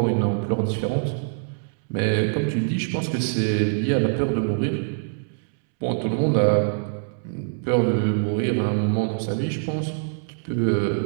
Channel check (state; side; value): silent; left; 63 dB below the other